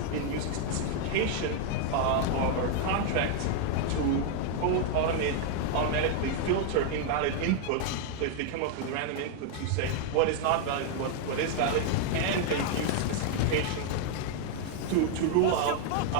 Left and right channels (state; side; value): different; both; correlation 0.00